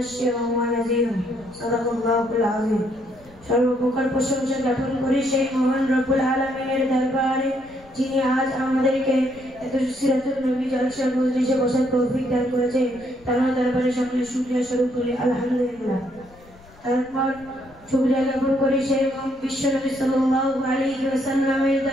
ونذيرا. صدق الله العظيم. সর্বপ্রকার প্রশংসা জ্ঞাপন করি সেই মহান রব্বুল আলামিনের দরবারে, যিনি আজ আমাদেরকে এত সিরাতুল নবী জলসা মজলিসে বসার তৌফিক দান করেছেন। তার দরবারে সকলে শুকরিয়া স্বরূপ করি আলহামদুলিল্লাহ। তারপর শুকরিয়া জ্ঞাপন করি সেই বিশ্ব নবী সাল্লাল্লাহু আলাইহি ওয়াসাল্লামের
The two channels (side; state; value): left; noise; rumble, 25 dB below the sound